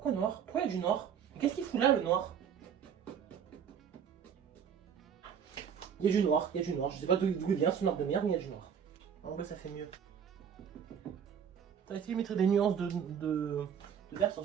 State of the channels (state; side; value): quieter; left; 7.9 dB